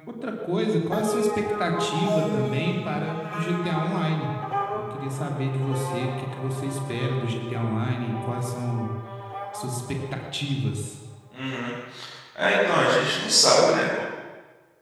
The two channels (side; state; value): both; identical; correlation 1.00